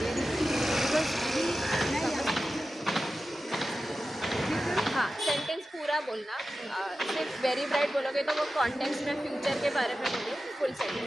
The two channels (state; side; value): normal; both; correlation 0.93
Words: because अभी मैं यहाँ हाँ, सेंटेंस पूरा बोलना, सिर्फ वेरी ब्राइट बोलोगे तो वो कॉन्टेक्स्ट में फ्यूचर के बारे में बोलिए, फुल